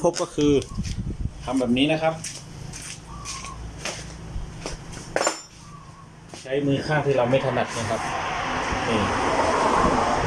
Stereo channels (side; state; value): both; identical; correlation 1.00